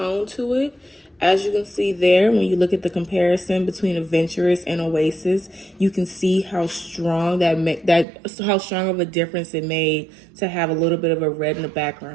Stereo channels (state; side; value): drops out; left; at 8.1 s